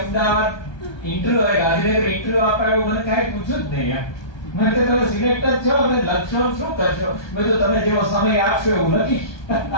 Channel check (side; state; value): right; late; 1.2 ms